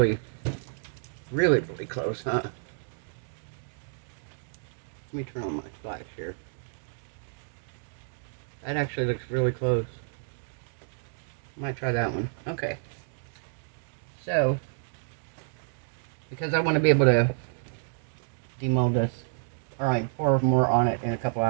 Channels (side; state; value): left; silent; digital silence